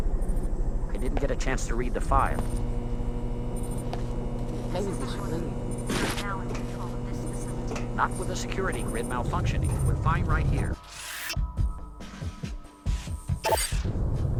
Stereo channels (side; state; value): both; identical; correlation 1.00